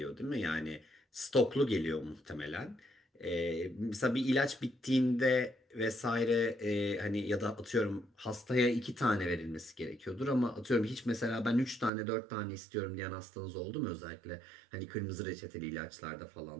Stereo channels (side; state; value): left; drops out; at 11.9 s